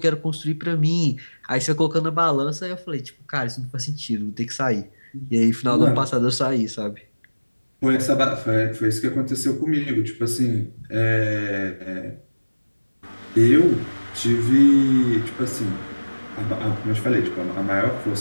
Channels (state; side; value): inverted; both; correlation -1.00